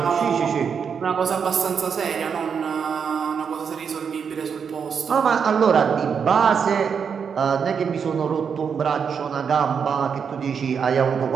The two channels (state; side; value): quieter; left; 6.6 dB